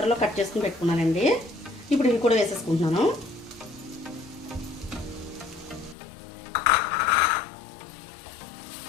కట్ చేసుకుని పెట్టుకున్నానండి. ఇప్పుడు ఇవి కూడా వేసేసుకుంటున్నాను.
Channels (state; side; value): drops out; right; at 6.0 s